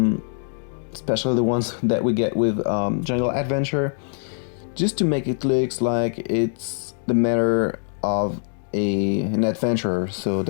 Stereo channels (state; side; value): silent; right; digital silence